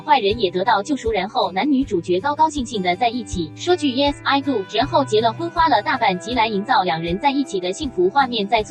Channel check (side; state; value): both; identical; correlation 1.00